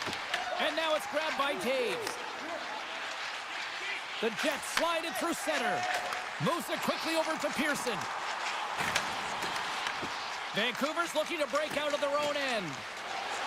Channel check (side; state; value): both; identical; correlation 1.00